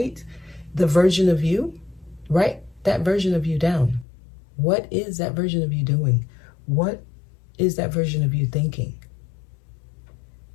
the version of you. Write that version of you down. What is that version of you doing? What is that version of you thinking?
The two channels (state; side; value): drops out; right; at 4.0 s